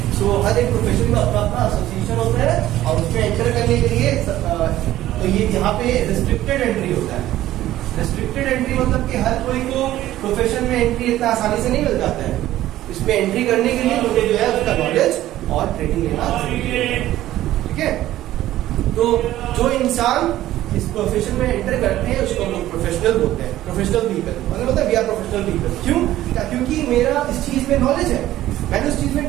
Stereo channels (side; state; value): left; quieter; 14.2 dB